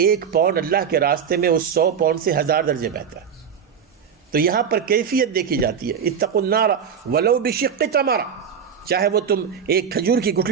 1 پاؤنڈ اللہ کے راستے میں اس 100 پاؤنڈ سے 1000 درجے بہتر ہے۔ تو یہاں پر کیفیت دیکھی جاتی ہے۔ اتقوا النار ولو بشق تمرہ، چاہے وہ تم ایک کھجور کی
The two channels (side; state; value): left; quieter; 7.3 dB